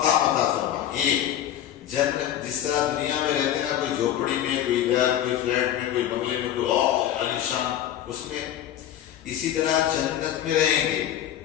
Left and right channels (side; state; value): right; quieter; 11.3 dB